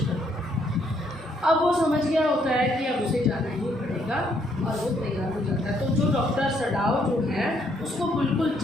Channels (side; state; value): both; normal; correlation 0.70